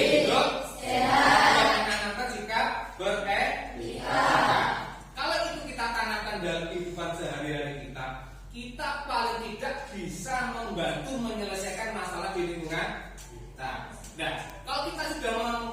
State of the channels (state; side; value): identical; both; correlation 1.00